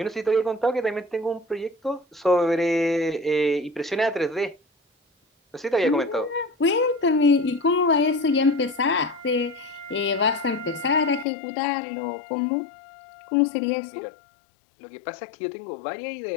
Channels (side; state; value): right; drops out; at 11.2 s